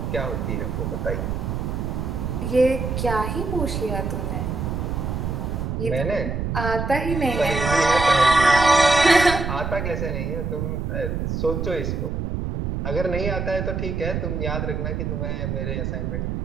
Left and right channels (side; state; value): right; noise; rumble, 2 dB below the sound